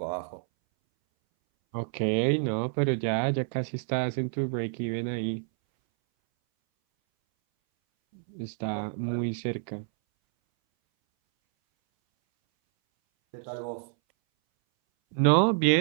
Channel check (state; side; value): silent; left; 59 dB below the other